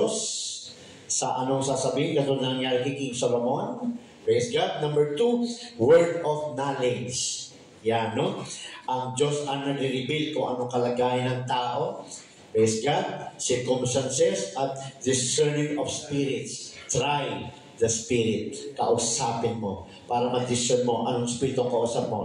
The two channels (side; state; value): both; identical; correlation 1.00